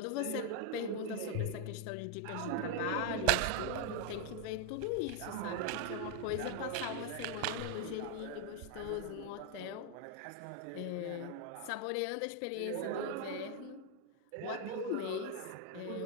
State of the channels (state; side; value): different; both; correlation 0.00